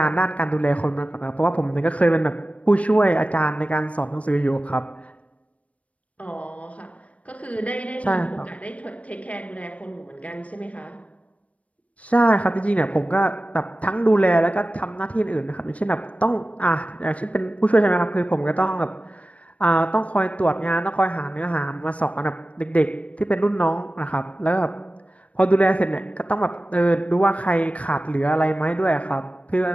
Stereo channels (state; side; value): late; right; 0.066 ms